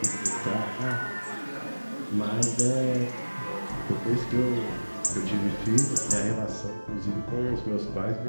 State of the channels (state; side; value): inverted; both; correlation -1.00